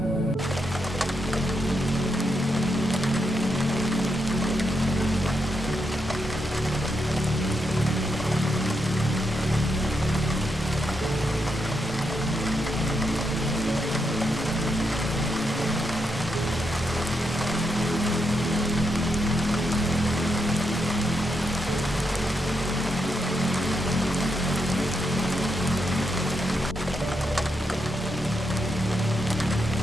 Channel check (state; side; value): normal; both; correlation 0.82